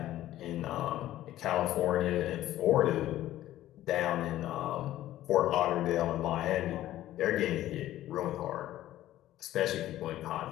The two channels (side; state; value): right; quieter; 14.0 dB